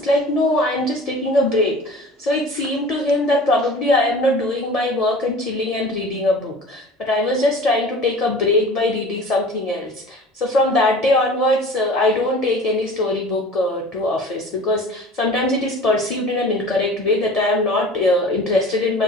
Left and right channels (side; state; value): both; normal; correlation 0.42